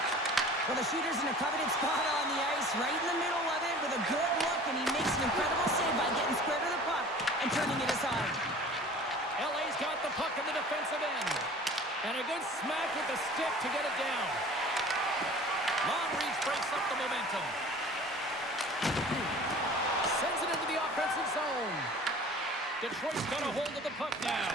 Well, the shooter's in a coveted spot on the ice, right in the middle of it with a good look, and he makes an incredible save by getting square to the puck and turning it aside. LA's got the puck in the defensive end. And a good smack with the stick to get it down. Long reach breaks up the momentum. Sends it into the offensive zone. Detroit's got a hold of the puck now.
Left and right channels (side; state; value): both; normal; correlation 0.44